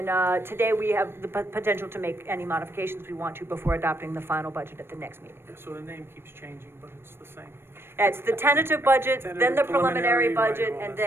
today we have the potential to make any modifications we want to before adopting the final budget at the next meeting. Yeah, so the name keeps changing, but it's the same. It's the tentative budget, then the Tentative, preliminary preliminary, budget, right, all and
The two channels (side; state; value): left; late; 0.11 ms